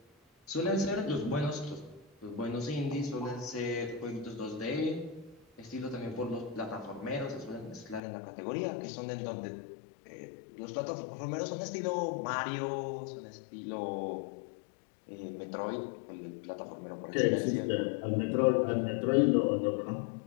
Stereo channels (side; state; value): right; drops out; at 8.0 s